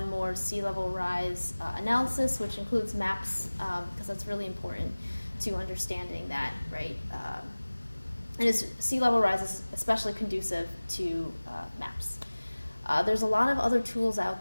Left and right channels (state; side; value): inverted; both; correlation -1.00